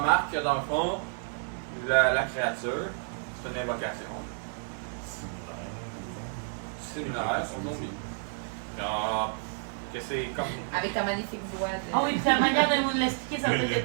que dans le fond, la créature, c'est une invocation similaire aux zombies. Que c'est comme. Avec ta magnifique voix de. Ah oui, puis la manière de nous l'expliquer, ça peut être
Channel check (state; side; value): silent; left; 58 dB below the other